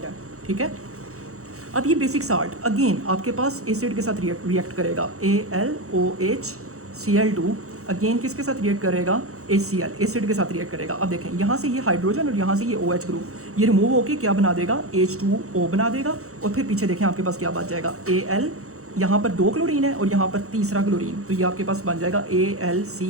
है। ठीक है, अब ये बेसिक साल्ट अगेन आपके पास एसिड के साथ रिएक्ट करेगा, AlOHCl2 अगेन किसके साथ रिएक्ट करेगा? HCl, एसिड के साथ रिएक्ट करेगा। अब देखें यहाँ से ये हाइड्रोजन और यहाँ से ये OH ग्रुप, ये रिमूव होकर क्या बना देगा? H2O बना देगा। और फिर पीछे देखें आपके पास क्या बच जाएगा? Al, यहाँ पर 2 क्लोरीन है और यहाँ पर तीसरा क्लोरीन, तो ये आपके पास बन जाएगा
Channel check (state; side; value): late; left; 0.64 ms